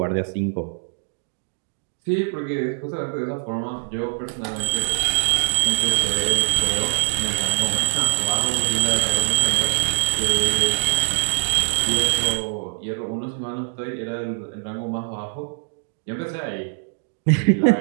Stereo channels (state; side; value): silent; left; digital silence